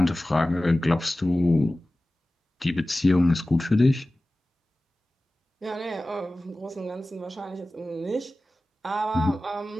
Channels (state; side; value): normal; both; correlation 0.96